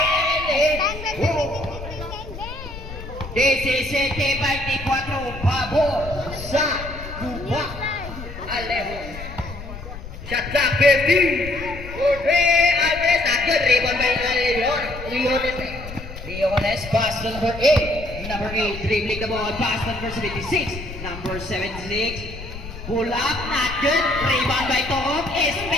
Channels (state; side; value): noise; left; rumble, 11 dB below the sound